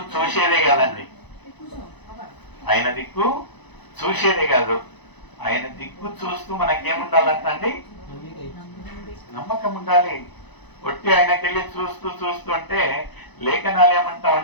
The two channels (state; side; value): late; right; 1.0 ms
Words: చూసేదే కదండి, ఆయన దిక్కు చూసేదే కాదు, ఆయన దిక్కు చూస్తూ మనకేముండాలంటండి? నమ్మకం ఉండాలి. ఒట్టి ఆయనకెళ్ళి చూస్తూ చూస్తూ అంటే లేఖనాలు ఏమంటా